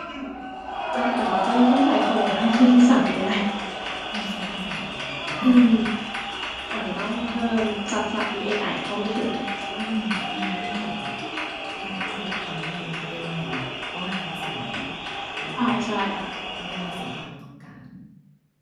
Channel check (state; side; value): identical; both; correlation 1.00